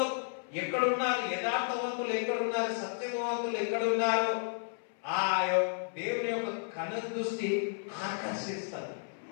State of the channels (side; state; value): right; silent; 56 dB below the other